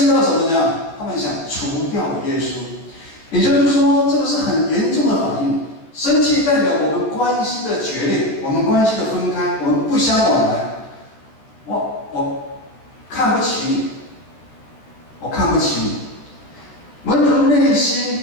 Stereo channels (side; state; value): right; late; 13 ms